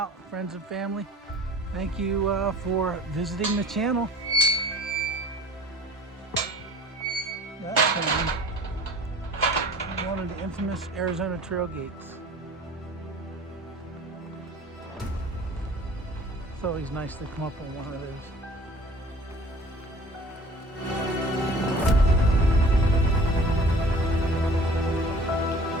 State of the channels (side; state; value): both; normal; correlation 0.46